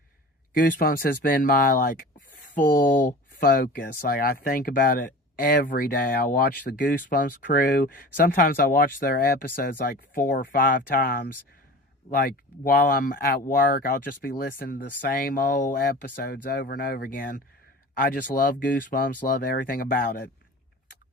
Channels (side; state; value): both; normal; correlation 0.38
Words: Goosebumps has been my like full focus. Like I think about it every day. I watch the Goosebumps crew. Sometimes I watch their episodes like 4 or 5 times. Like while I'm at work, I'll just be listening to the same old episodes over and over again. I just love Goosebumps, love everything about it.